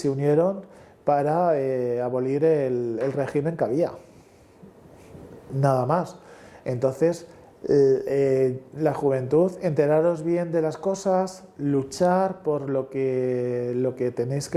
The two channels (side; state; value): both; identical; correlation 1.00